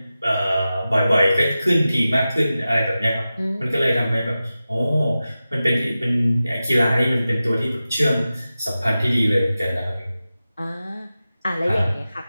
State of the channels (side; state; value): both; inverted; correlation -0.94